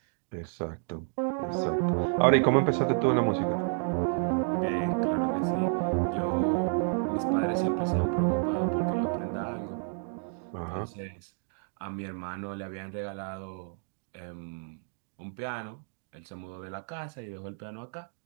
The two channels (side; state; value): left; silent; 55 dB below the other